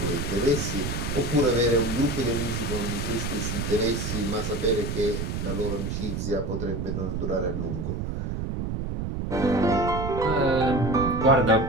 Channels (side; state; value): right; noise; rumble, 3 dB below the sound